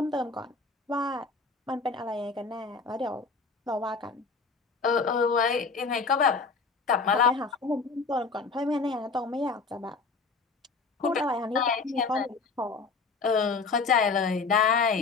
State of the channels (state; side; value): quieter; right; 4.5 dB